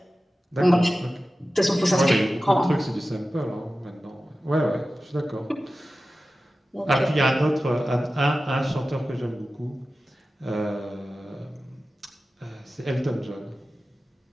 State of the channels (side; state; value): both; normal; correlation 0.94